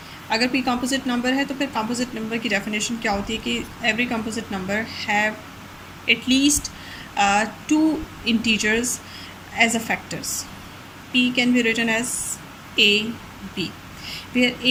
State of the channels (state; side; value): identical; both; correlation 1.00